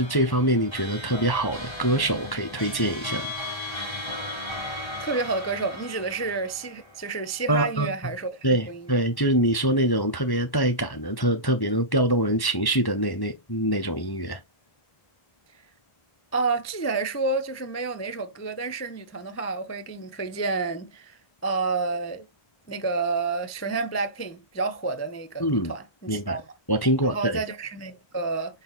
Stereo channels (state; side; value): late; right; 1.1 ms